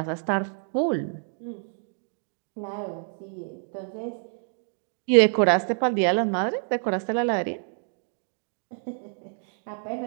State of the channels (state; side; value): silent; left; 60 dB below the other